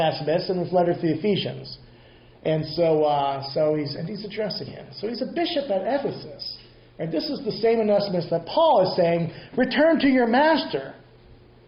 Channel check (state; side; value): identical; both; correlation 1.00